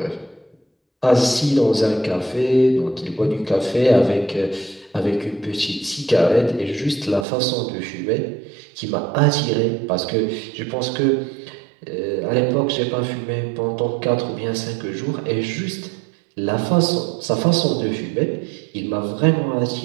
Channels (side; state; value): left; drops out; at 7.2 s